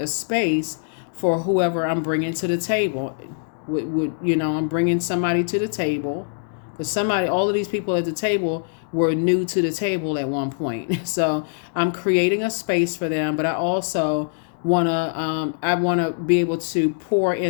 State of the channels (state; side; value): silent; right; digital silence